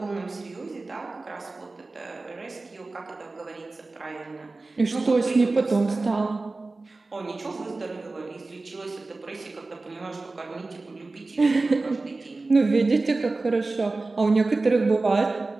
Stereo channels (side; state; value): left; quieter; 3.4 dB